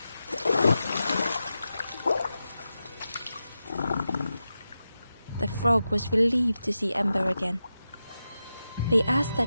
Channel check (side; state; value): both; inverted; correlation -0.91